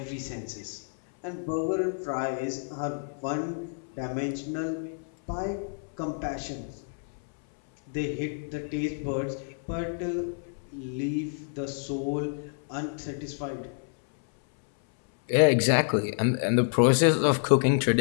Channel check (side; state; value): right; silent; 59 dB below the other